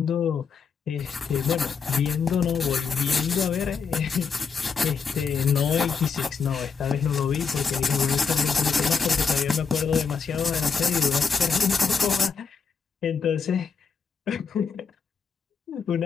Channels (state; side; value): quieter; right; 5.6 dB